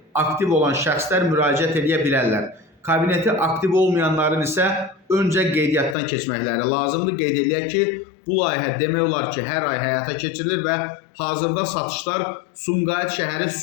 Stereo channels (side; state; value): right; drops out; at 6.0 s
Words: aktiv olan şəxslər müraciət edə bilərlər. Kabineti aktiv olmayanların isə öncə qeydiyyatdan keçməkləri lazımdır. Qeyd edək ki, bu layihə demək olar ki, hər ay həyata keçirilir və hazırda satışlar Sumqayıt şəhəri